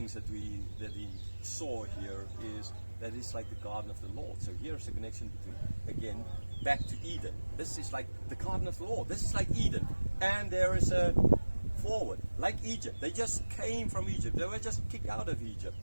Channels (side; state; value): both; inverted; correlation -1.00